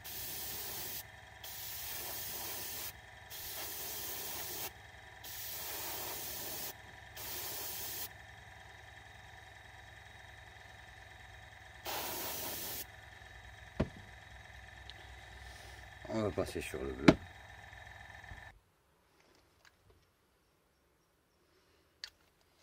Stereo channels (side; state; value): both; identical; correlation 1.00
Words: On va passer sur le bleu.